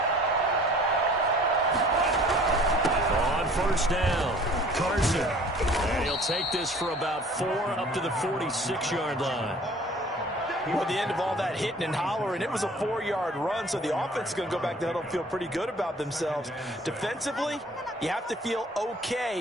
First down, Carson. And he'll take this for about 4 up to the 46-yard line. Well, the end of all that hitting and hollering, it was a 4-yard run, so the offense is going to go back to huddle and feel pretty good about themselves. Defensively, you have to feel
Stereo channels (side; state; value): both; normal; correlation 0.51